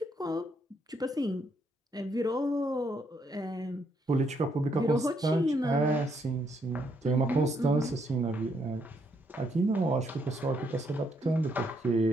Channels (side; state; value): both; normal; correlation 0.74